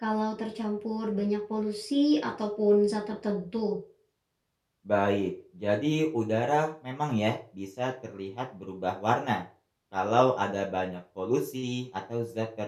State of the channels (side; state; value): both; identical; correlation 1.00